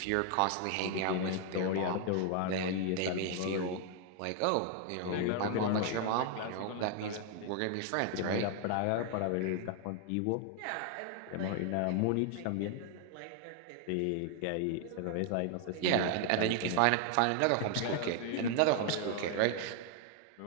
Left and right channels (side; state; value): both; different; correlation 0.00